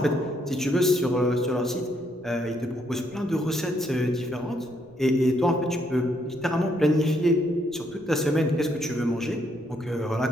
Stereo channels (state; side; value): noise; left; rumble, 29 dB below the sound